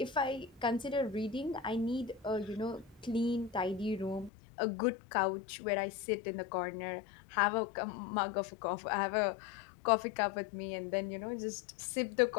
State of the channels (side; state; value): right; drops out; at 4.3 s